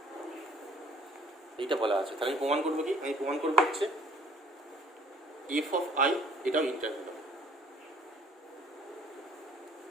এইটা বলা আছে। তাহলে আমি প্রমাণ করবো কি, আমি প্রমাণ করবো হচ্ছে এফ অফ আই এটাও ইন্টারভেল,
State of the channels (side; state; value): both; normal; correlation 0.58